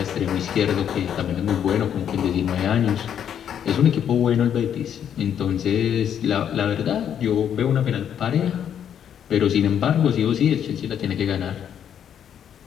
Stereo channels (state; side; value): quieter; right; 9.1 dB